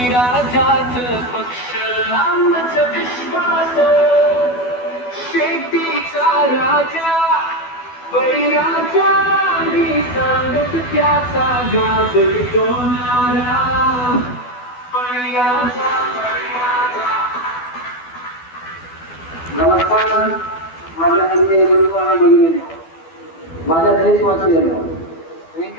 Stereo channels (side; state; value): right; late; 12 ms